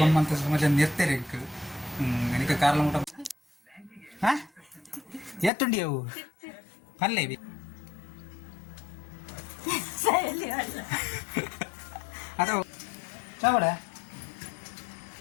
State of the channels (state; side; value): drops out; right; at 5.5 s